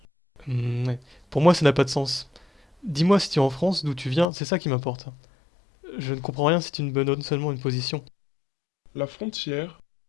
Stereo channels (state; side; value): drops out; right; at 4.2 s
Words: Ouais. Pour moi, ça n'a pas de sens. Dis-moi si tu es en France, d'où tu viens, c'est ça qui m'importe. Je ne comprends rien si tu me donnes seulement une position. La frontière,